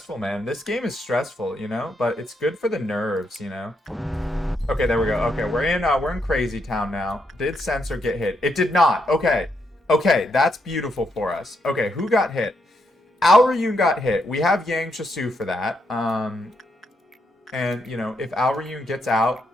man. This game is stressful, but it's good for the nerves, Okay, there we go. Okay, we're in Crazy Town now. Did Censored get hit? It did not. Okay, that's beautiful for us. Okay, who got hit? Aoryun got hit. We have Yang Chasu for that. And if Aoryun gets out,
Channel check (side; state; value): both; normal; correlation 0.79